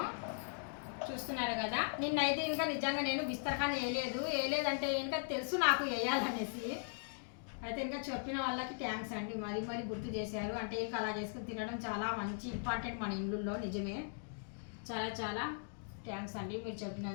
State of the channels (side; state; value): right; silent; digital silence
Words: చూస్తున్నారు కదా, నిన్నైతే ఇంకా నిజంగా నేను బిస్తరఖాన్ వేయలేదంటే ఇంకా తెలుసు నాకు వేయాలనేసి. అయితే ఇంకా చెప్పిన వాళ్ళకి థ్యాంక్స్ అండి, మరీ మరీ గుర్తు చేశారు. అంటే ఇంకా అలా చేసుకుని తినడం చాలా మంచి ఇంపార్టెంట్ మన ఇళ్ళల్లో. నిజమే, చాలా చాలా థ్యాంక్స్ అండి మీరు